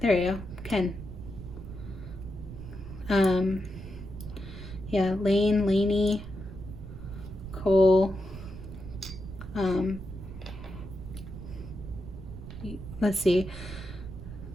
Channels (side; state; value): right; noise; rumble, 11 dB below the sound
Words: go, Ken. Yeah, Lane, Laney, Cole. Let's see.